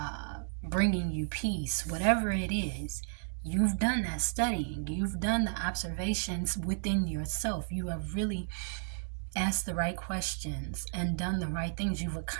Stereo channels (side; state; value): left; silent; digital silence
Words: bringing you peace, whatever it is, you've done that studying, you've done the observations within yourself, you have really asked the right questions and done the right things. You've